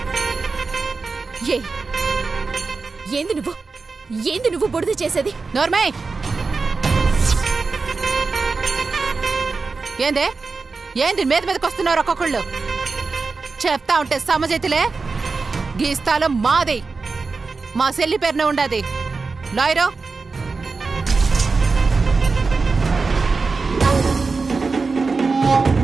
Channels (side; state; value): left; quieter; 4.3 dB